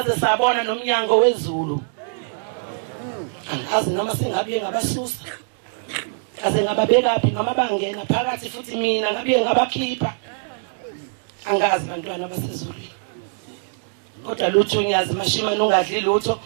sabona nomnyango wezulu angazi noma singabiye ngabasusa kaze ngababekaphi noma bangena phakathi futhi mina ngabiye ngabakhipha angazi bantwana basezulwini kodwa lutho unyazi Mashimane ungadli lutho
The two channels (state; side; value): silent; left; digital silence